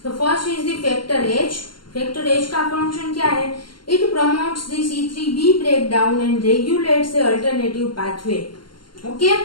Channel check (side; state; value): right; late; 0.72 ms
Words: तो first is the factor H. Factor H का फंक्शन क्या है? It promotes the C3b breakdown and regulates the alternative pathway. Okay,